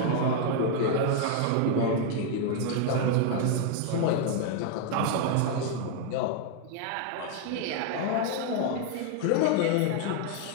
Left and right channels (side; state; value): both; different; correlation 0.00